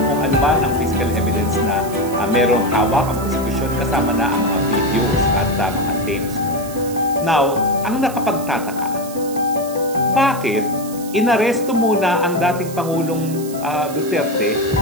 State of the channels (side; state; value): right; noise; hiss, 15 dB below the sound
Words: ano man ang physical evidence na merong hawak ang prosecution kasama na ang mga videos at mga tapes. Now, ang nakapagtataka, bakit inaresto muna ang dating Pangulong Duterte